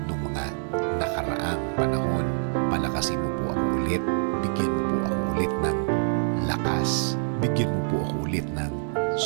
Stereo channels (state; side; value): silent; left; digital silence